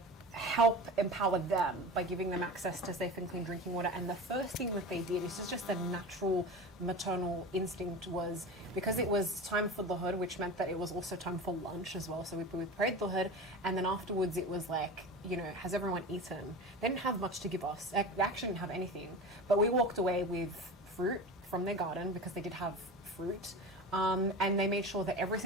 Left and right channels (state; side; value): normal; both; correlation 0.31